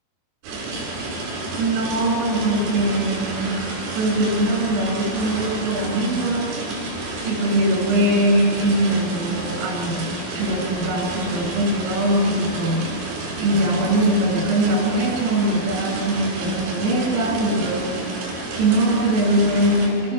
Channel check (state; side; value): late; left; 23 ms